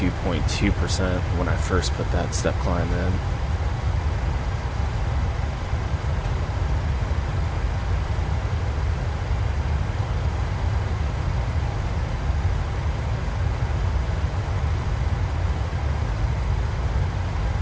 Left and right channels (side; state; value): both; identical; correlation 1.00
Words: when I first put that step climb in.